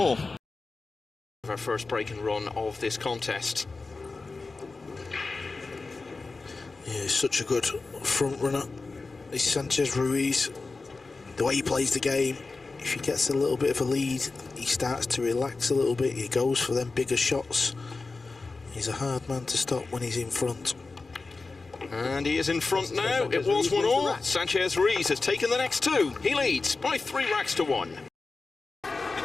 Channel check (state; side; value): quieter; right; 3.8 dB